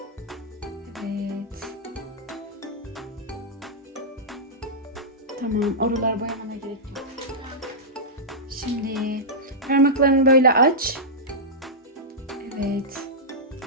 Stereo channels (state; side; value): normal; both; correlation -0.11